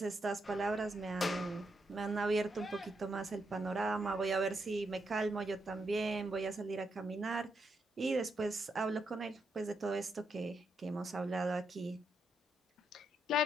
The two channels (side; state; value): both; normal; correlation 0.81